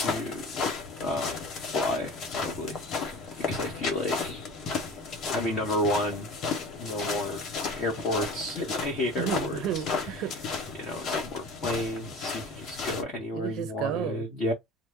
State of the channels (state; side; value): normal; both; correlation 0.38